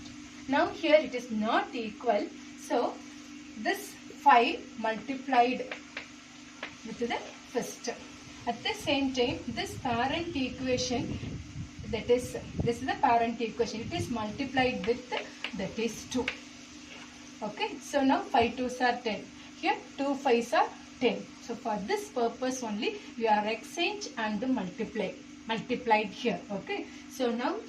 Now here it is not equal, so this 5 multiplied with the first. At the same time, this parent equation, that is, this is the parent equation, it is multiplied with that is 2. Okay, so now 5 2s are 10. Here 2 5s are 10. So for this purpose only we are exchange and multiplied here. Okay, so now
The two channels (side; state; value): both; identical; correlation 1.00